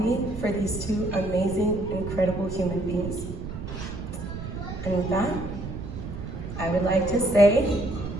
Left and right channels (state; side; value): noise; right; rumble, 8 dB below the sound